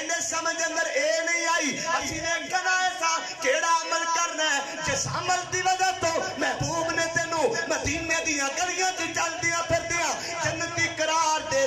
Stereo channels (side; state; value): both; identical; correlation 1.00